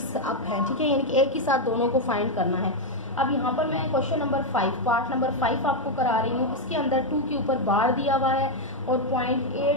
अप हैं, ठीक है, यानी कि एक ही साथ दोनों को फाइंड करना है। अब यहाँ पर मैं क्वेश्चन नंबर 5 पार्ट नंबर 5 आपको करा रही हूँ। इसके अंदर 2 के ऊपर बार दिया हुआ है और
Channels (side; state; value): both; normal; correlation 0.02